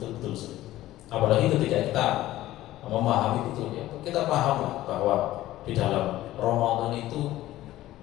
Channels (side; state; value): right; quieter; 15.2 dB